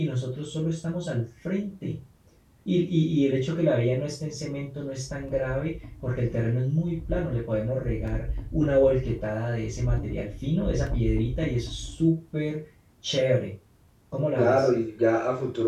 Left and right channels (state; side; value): identical; both; correlation 1.00